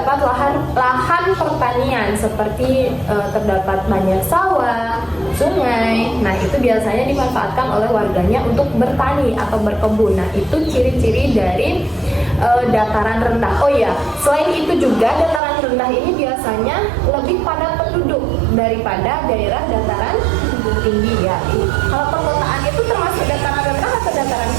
lahan pertanian seperti terdapat banyak sawah, sungai. Nah, itu biasanya dimanfaatkan oleh warganya untuk bertani atau berkebun. Nah, itu ciri-ciri dari dataran rendah. Oh ya, selain itu juga dataran rendah ini biasanya lebih padat penduduk daripada daerah dataran tinggi ya. Kalau perkotaan itu termasuk dataran rendah atau dataran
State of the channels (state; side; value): drops out; left; at 15.4 s